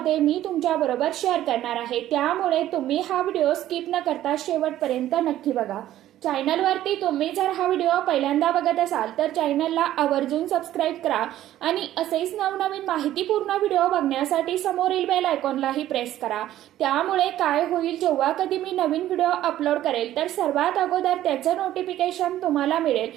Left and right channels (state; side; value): quieter; left; 13.2 dB